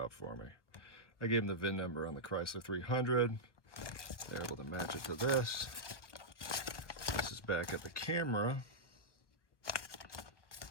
for me. I gave them the VIN number on the Chrysler 300. They're able to match it to this. This is back at the camera.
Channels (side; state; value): right; late; 1.0 ms